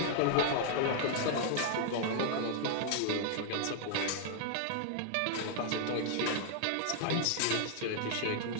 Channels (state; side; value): different; both; correlation 0.00